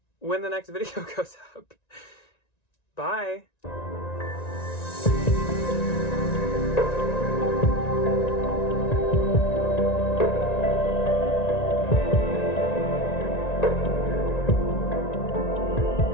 when the next video goes up. Bye!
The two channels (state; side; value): late; right; 1.9 ms